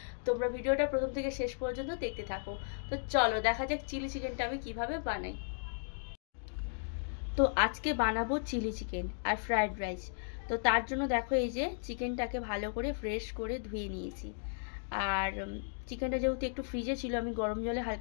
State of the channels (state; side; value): silent; right; digital silence